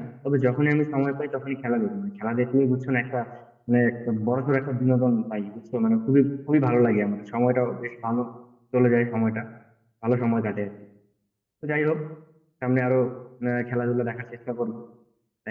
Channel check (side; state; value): both; identical; correlation 1.00